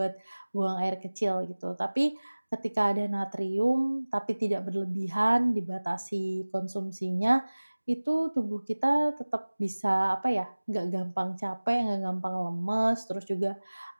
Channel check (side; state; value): both; inverted; correlation -1.00